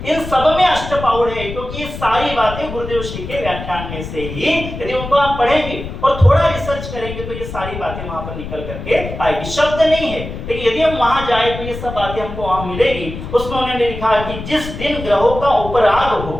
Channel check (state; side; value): noise; left; rumble, 9 dB below the sound